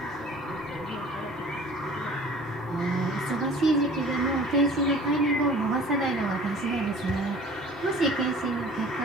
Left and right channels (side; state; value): both; normal; correlation 0.46